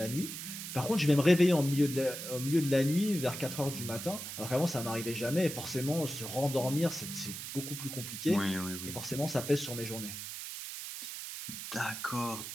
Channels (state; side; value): noise; right; hiss, 8 dB below the sound